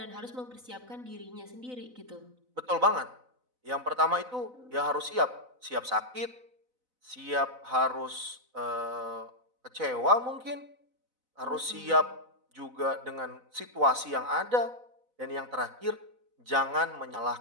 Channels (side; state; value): left; late; 4.0 ms